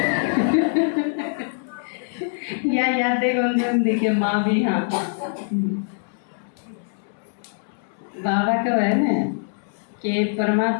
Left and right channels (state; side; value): silent; right; 63 dB below the other